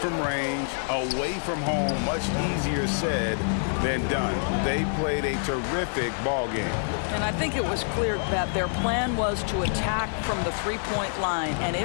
range, away from home, much easier said than done. They played a terrific ball game. And I think it was clear that their plan was to attack from the three-point line, and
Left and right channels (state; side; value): silent; right; 60 dB below the other